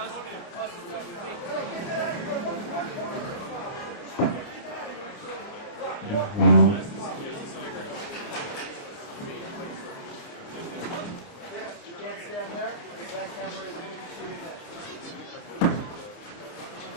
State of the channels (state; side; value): late; right; 29 ms